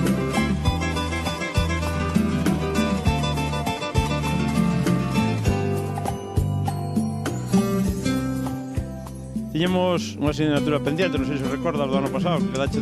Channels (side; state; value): both; identical; correlation 1.00